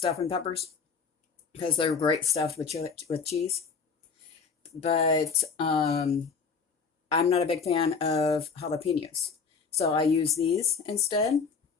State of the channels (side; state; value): right; quieter; 5.5 dB